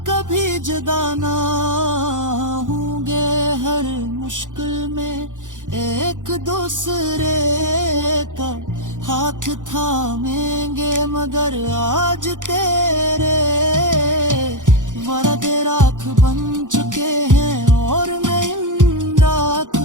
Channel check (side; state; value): left; late; 0.87 ms